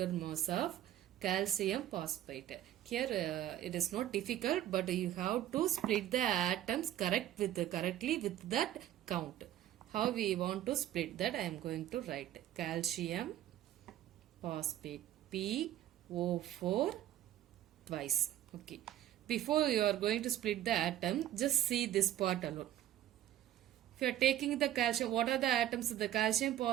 mass of calcium phosphate. Here it is not difficult, but you have to split the atoms correctly with that count. How we want to split that? I am going to write calcium phosphate PO4 twice. Okay. Before you are going to split the atom, just see this part alone. If you are taking the calcium, what are the atoms of the calcium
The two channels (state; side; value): quieter; left; 12.5 dB